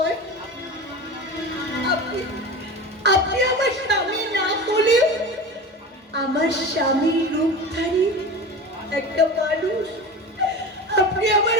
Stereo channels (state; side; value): normal; both; correlation 0.31